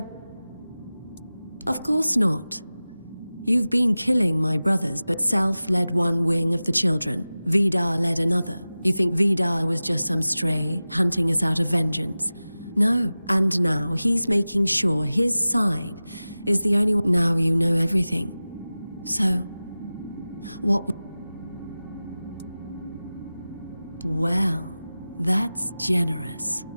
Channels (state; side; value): inverted; both; correlation -0.97